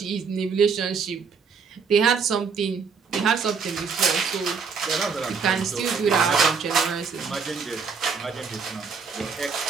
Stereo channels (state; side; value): quieter; left; 5.6 dB